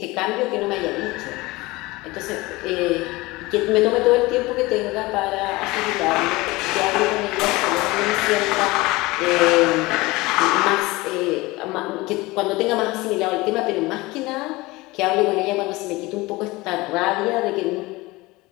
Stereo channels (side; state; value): right; quieter; 21.4 dB